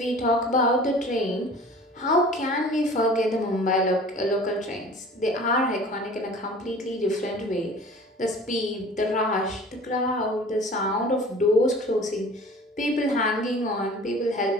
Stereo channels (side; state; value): both; normal; correlation 0.44